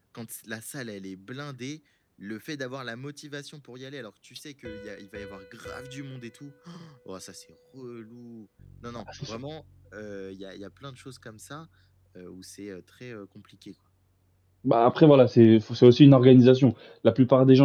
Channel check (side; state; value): both; identical; correlation 1.00